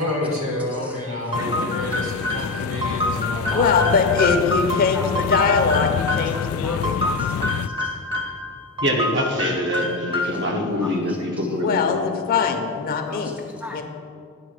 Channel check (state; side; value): quieter; right; 3.5 dB